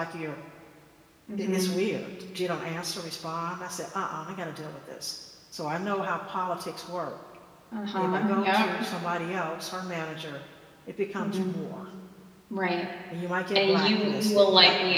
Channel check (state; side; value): identical; both; correlation 1.00